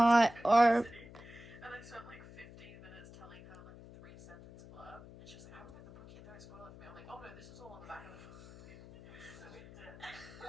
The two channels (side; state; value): left; noise; hum, 18 dB below the sound